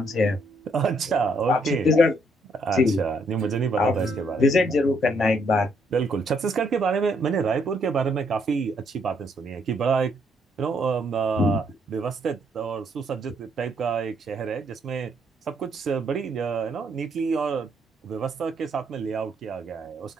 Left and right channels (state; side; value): normal; both; correlation 0.72